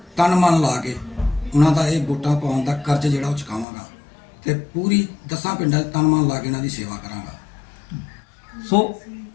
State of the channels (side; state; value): right; drops out; at 3.7 s